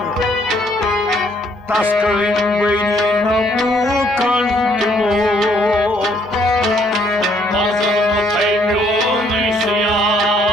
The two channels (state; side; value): normal; both; correlation 0.66